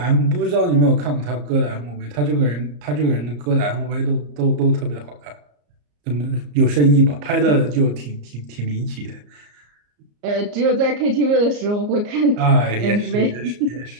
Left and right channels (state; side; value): late; left; 34 ms